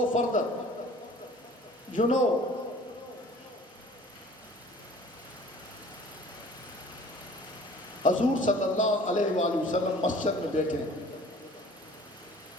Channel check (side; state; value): both; normal; correlation 0.49